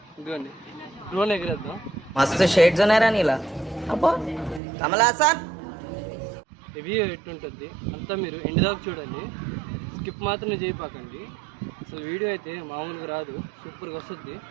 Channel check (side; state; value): left; drops out; at 4.6 s